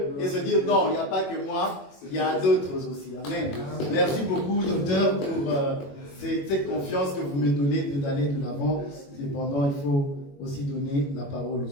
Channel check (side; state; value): right; late; 21 ms